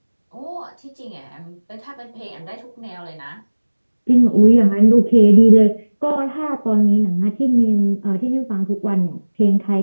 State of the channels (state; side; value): inverted; both; correlation -1.00